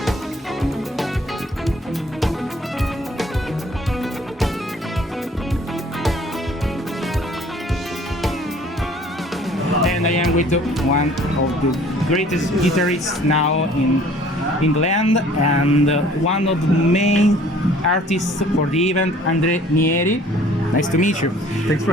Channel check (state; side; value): normal; both; correlation 0.54